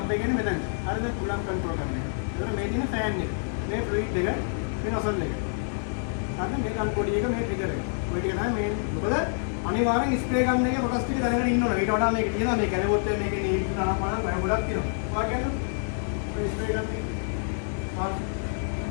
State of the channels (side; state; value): right; silent; 58 dB below the other